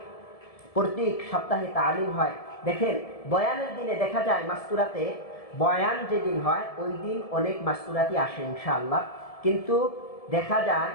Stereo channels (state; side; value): late; right; 1.7 ms